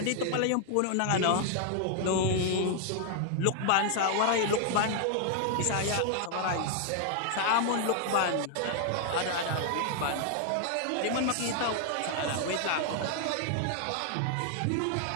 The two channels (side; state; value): both; different; correlation 0.00